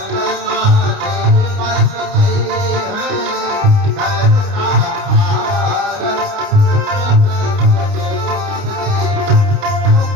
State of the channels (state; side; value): late; left; 29 ms